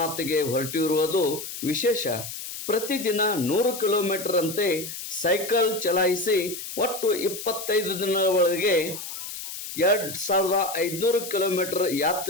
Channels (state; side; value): noise; left; hiss, 9 dB below the sound